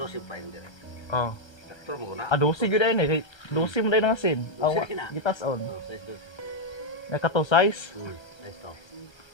pa yun dire. oh Sakto mo na. 12 gyud ay ni kay 12 mo dai nga sin aw 12 na. gitas on Size 12. na kato size Size to.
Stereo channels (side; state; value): right; late; 1.3 ms